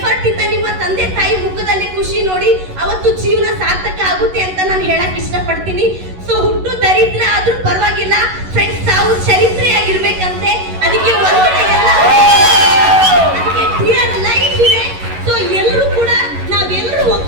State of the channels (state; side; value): late; left; 11 ms